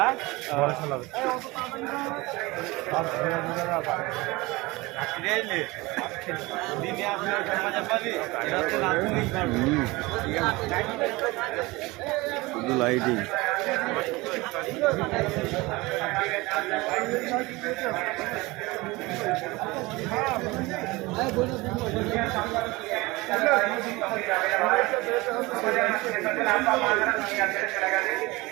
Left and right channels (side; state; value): left; quieter; 22.4 dB